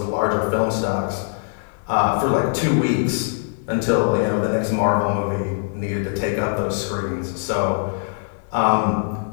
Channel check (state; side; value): silent; right; 60 dB below the other